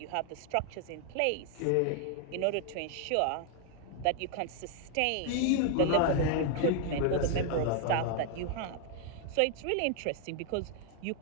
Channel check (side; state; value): both; different; correlation 0.00